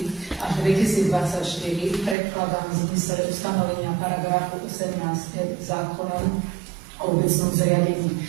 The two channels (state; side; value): drops out; left; at 2.1 s